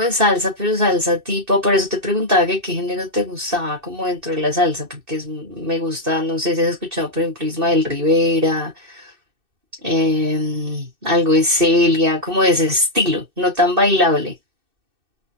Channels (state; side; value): late; left; 2.6 ms